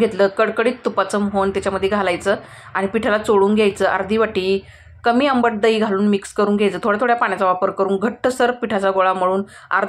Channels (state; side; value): identical; both; correlation 1.00